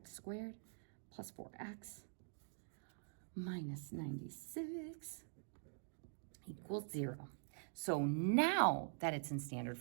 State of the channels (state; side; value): silent; left; digital silence